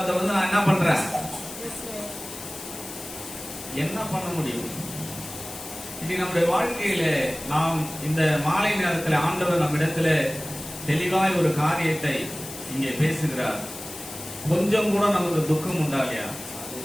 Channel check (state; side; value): noise; left; hiss, 12 dB below the sound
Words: வந்து நான் என்ன பண்றேன், என்ன பண்ண முடியும்? இது நம்முடைய வாழ்க்கையில நாம் இந்த மாலை நேரத்தில் ஆண்டவர் நம்மிடத்துல தெளிவாய் ஒரு காரியத்தை இங்கே பேசுகிறார். கொஞ்சம் கூட நமக்கு துக்கம் உண்டா இல்லையா?